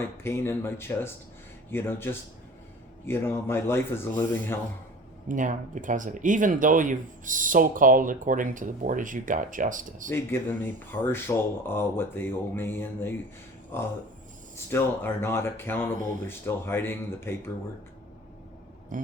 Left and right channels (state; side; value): normal; both; correlation 0.41